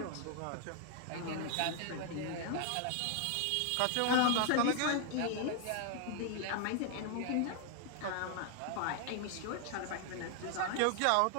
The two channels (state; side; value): different; both; correlation 0.00